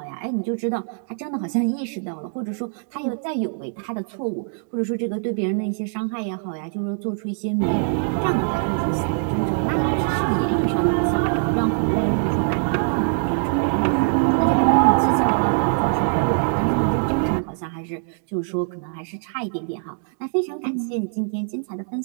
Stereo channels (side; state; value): left; silent; digital silence